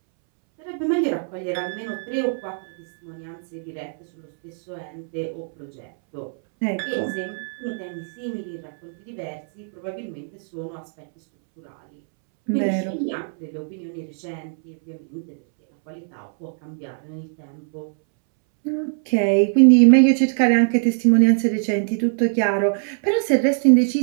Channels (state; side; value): silent; left; 64 dB below the other